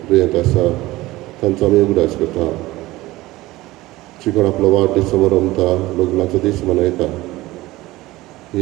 दुयेंत आसा तांचो आमी उगडास करता शिकोण आपलो वाडदीस समोर रमता लग्नाचो दीस मनयता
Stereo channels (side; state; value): left; quieter; 18.5 dB